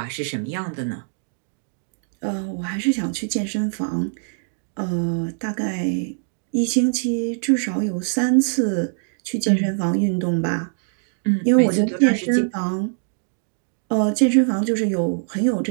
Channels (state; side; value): silent; left; digital silence